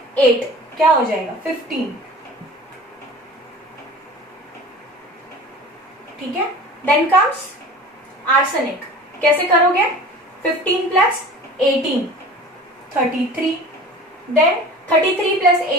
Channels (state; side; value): normal; both; correlation 0.40